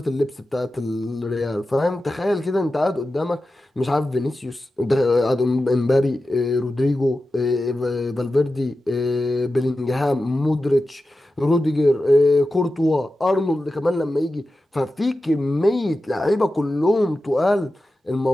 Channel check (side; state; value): both; normal; correlation 0.93